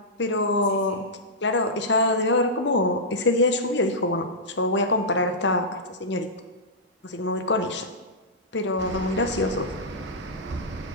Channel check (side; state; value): both; normal; correlation -0.12